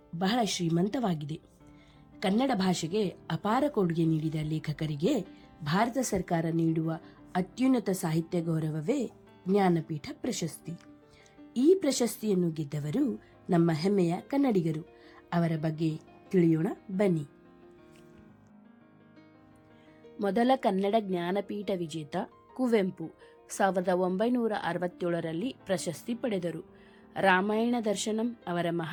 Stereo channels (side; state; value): both; identical; correlation 1.00